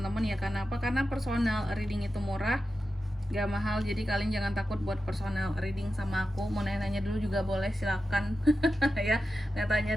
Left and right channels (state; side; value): normal; both; correlation 0.92